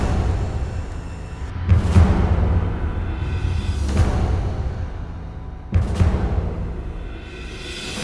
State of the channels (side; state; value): both; identical; correlation 1.00